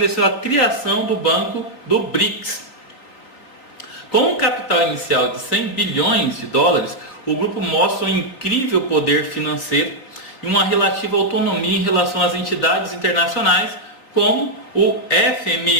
a criação do Banco do BRICS. Com um capital inicial de 100 bilhões de dólares, o grupo mostra um incrível poder financeiro e uma relativa autonomia em relação às entidades internacionais, como o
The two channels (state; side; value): late; right; 3.6 ms